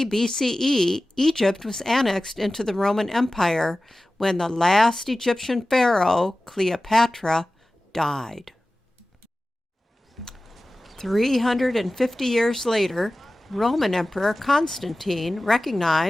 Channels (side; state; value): both; normal; correlation 0.96